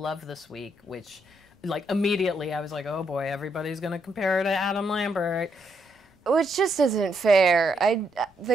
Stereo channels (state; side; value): normal; both; correlation 0.77